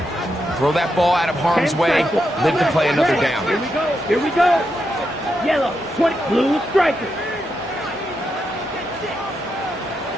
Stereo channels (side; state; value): both; normal; correlation 0.84